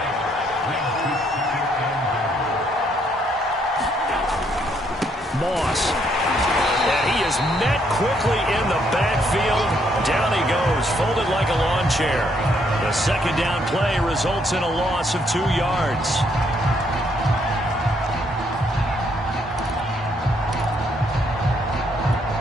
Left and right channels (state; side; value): normal; both; correlation 0.71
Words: Moss. And he is met quickly in the backfield. Down he goes, folded like a lawn chair. The 2nd down play results in a loss of 2 yards.